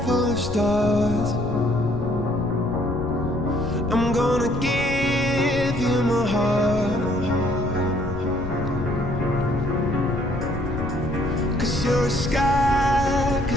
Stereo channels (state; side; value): noise; left; rumble, 8 dB below the sound